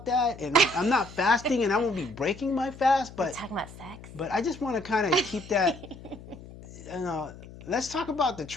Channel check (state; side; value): noise; left; hum, 17 dB below the sound